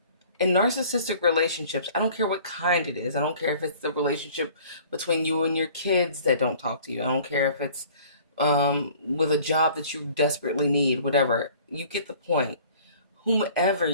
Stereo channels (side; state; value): both; inverted; correlation -0.51